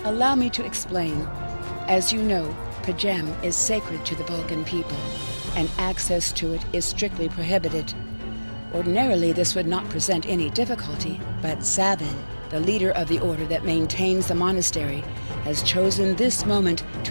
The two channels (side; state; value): both; inverted; correlation -1.00